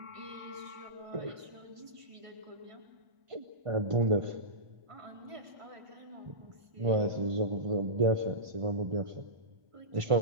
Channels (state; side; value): late; left; 1.5 ms